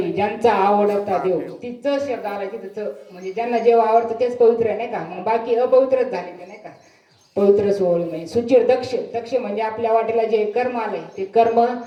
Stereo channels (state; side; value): identical; both; correlation 1.00